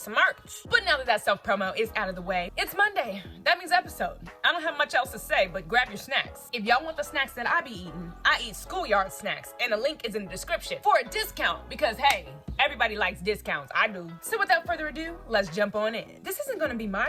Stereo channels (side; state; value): both; identical; correlation 1.00